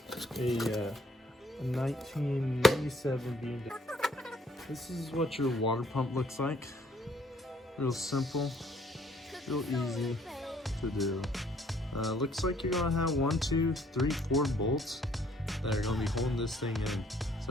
a 1997 BMW. This is what your water pump looks like. Real simple, real easy to do. Looks like you're gonna have 1, 2, 3, 4 bolts that are gonna be holding this thing in.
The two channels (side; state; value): both; normal; correlation 0.63